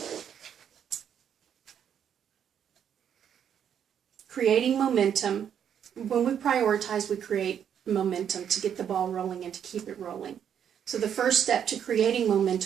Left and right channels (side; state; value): left; quieter; 8.7 dB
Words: Creating momentum. When we prioritize, we create momentum to get the ball rolling and to keep it rolling. So the first step to creating